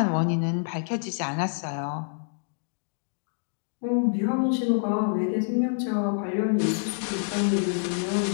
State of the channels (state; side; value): silent; right; digital silence